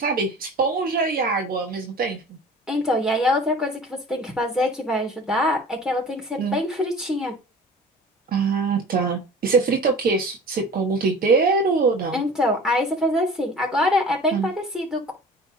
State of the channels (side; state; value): both; normal; correlation 0.42